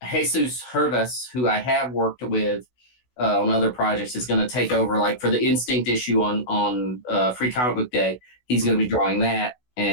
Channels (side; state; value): right; late; 16 ms